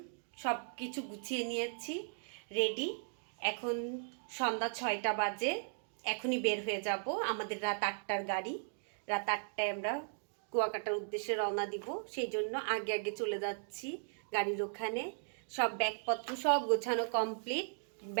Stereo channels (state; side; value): silent; left; digital silence